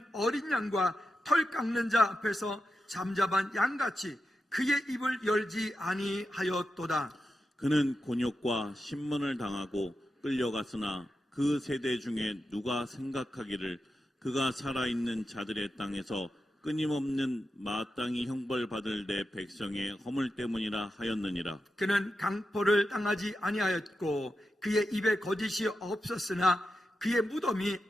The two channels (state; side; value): normal; both; correlation 0.89